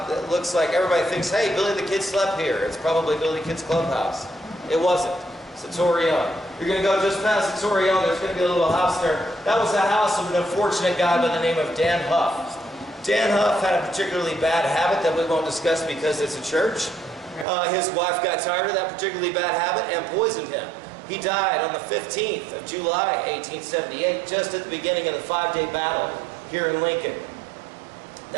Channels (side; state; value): left; drops out; at 17.4 s